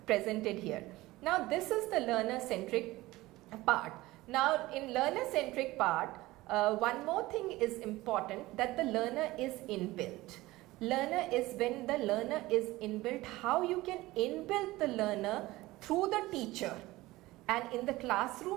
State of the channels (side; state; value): left; quieter; 18.8 dB